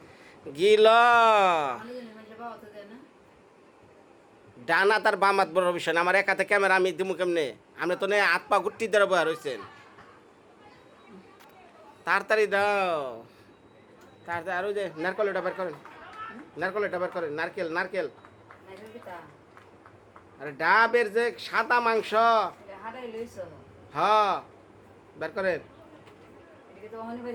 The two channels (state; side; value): identical; both; correlation 1.00